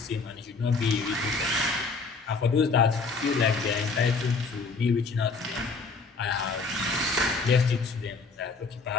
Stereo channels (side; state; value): right; quieter; 4.3 dB